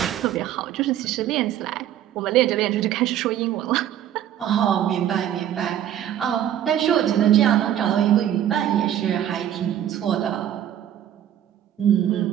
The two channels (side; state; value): left; quieter; 11.0 dB